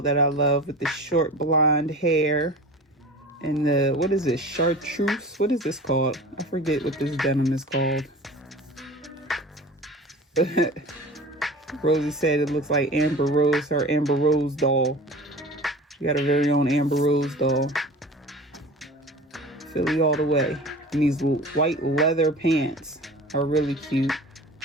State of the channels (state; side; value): normal; both; correlation 0.37